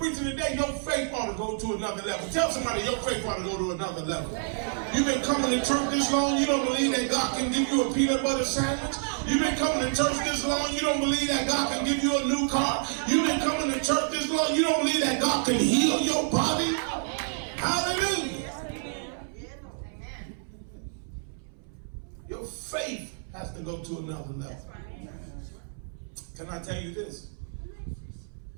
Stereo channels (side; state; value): left; silent; 59 dB below the other